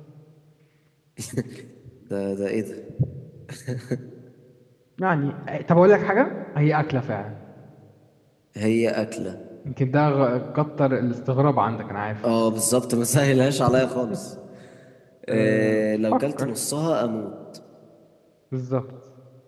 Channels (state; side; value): identical; both; correlation 1.00